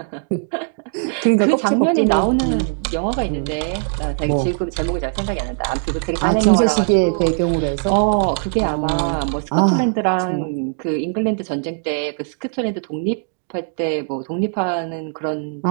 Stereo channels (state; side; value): silent; left; 64 dB below the other